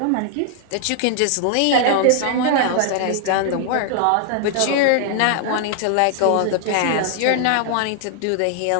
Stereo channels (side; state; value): both; different; correlation 0.00